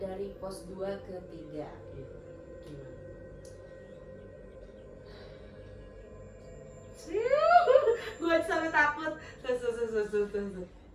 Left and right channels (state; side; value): identical; both; correlation 1.00